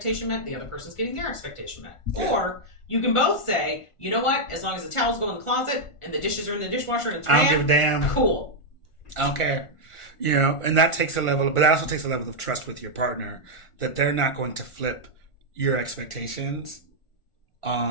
met, the other person's getting their expectation met. Yeah. Or you can both say, you know what? As long as the towels go in the closet and the dishes are in the dishwasher and it's I don't give a damn. Cool. I don't care. And that takes a level, but that also takes a level of trust with your partner, that they're not going to flip your expectations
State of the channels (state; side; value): late; right; 1.4 ms